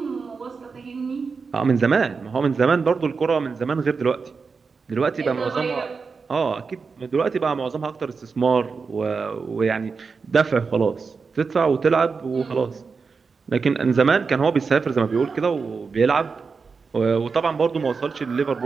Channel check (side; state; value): left; quieter; 5.0 dB